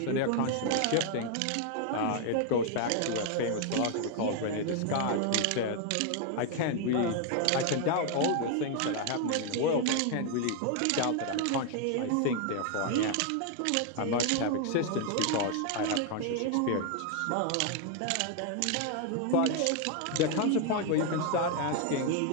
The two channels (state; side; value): different; both; correlation 0.00